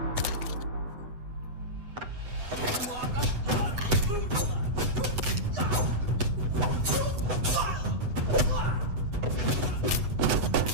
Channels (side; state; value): left; late; 8.0 ms